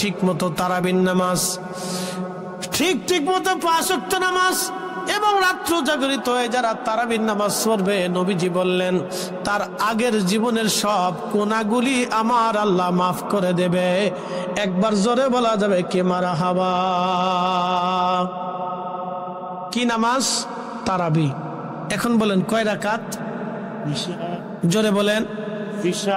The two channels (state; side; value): identical; both; correlation 1.00